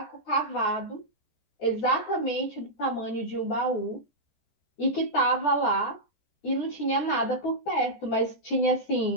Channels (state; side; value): late; right; 14 ms